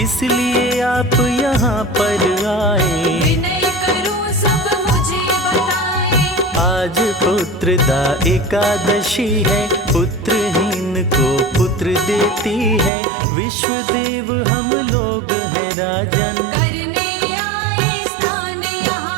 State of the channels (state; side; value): drops out; left; at 12.9 s